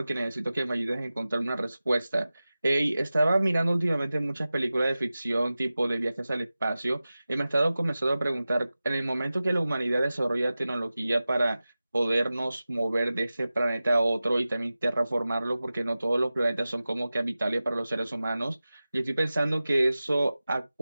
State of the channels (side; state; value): both; inverted; correlation -0.96